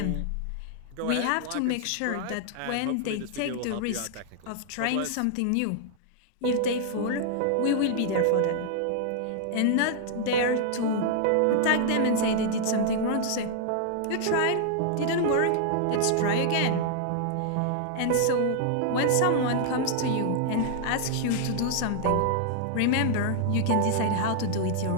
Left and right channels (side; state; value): both; different; correlation -0.01